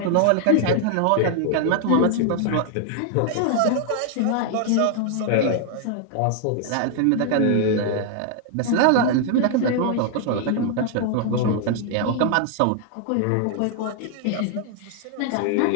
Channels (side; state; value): both; different; correlation 0.00